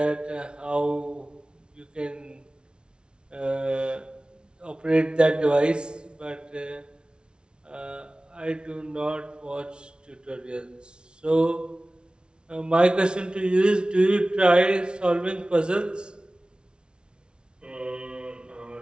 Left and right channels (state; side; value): late; left; 0.056 ms